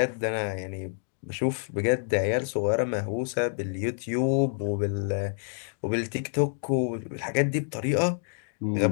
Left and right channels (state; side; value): silent; right; digital silence